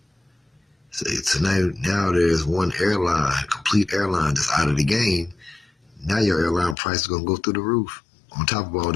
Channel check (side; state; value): right; drops out; at 6.8 s